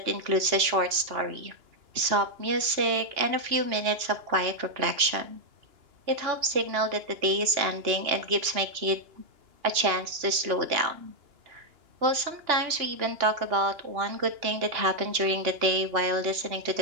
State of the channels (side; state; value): left; late; 2.9 ms